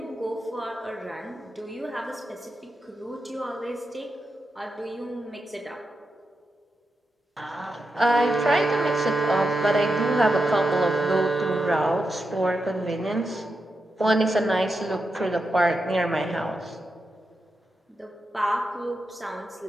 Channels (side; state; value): both; normal; correlation 0.87